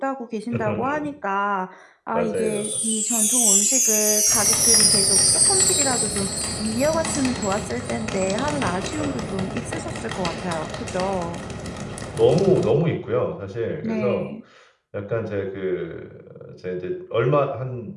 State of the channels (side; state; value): both; identical; correlation 1.00